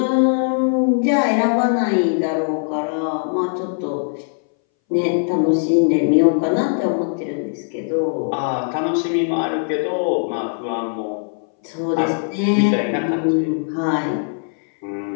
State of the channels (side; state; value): right; silent; 62 dB below the other